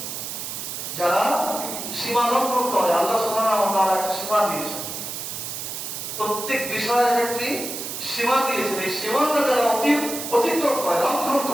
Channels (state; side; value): noise; right; hiss, 6 dB below the sound